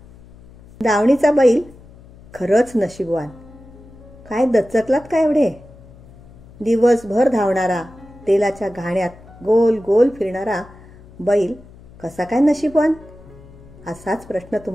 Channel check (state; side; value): noise; left; hum, 22 dB below the sound